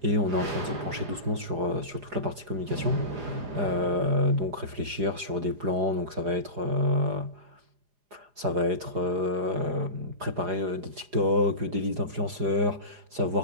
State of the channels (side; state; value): left; late; 4.9 ms